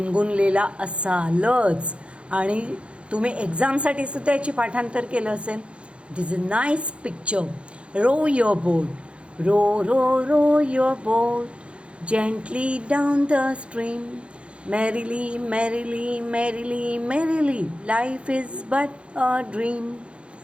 असालच आणि तुम्ही एक्झामसाठी सुद्धा याची पाठांतर केलं असेल. This is a nice picture. Row your boat, row row row your boat gently down the stream, merrily, merrily, merrily, merrily, life is but a dream,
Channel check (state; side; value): late; left; 0.059 ms